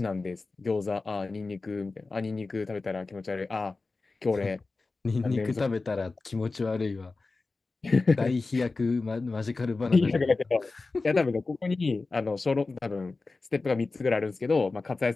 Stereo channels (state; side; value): quieter; right; 3.7 dB